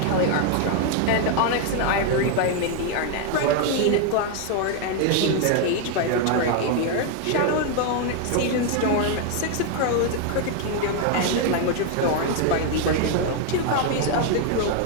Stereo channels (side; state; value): both; different; correlation 0.01